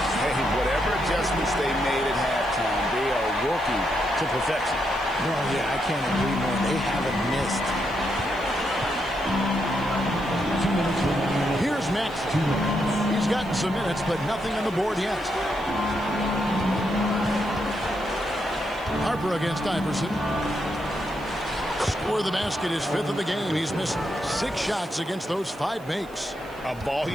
Hey, whatever adjustments they made at halftime, they are working to perfection. Well, yeah, I can't agree more. They haven't missed. Here's Max. He's gotten some minutes, but nothing on the board yet. Harper against Iverson. Score the basket, his 5th of the game. He's missed 6 shots against those 5 makes. A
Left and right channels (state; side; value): noise; right; hiss, 26 dB below the sound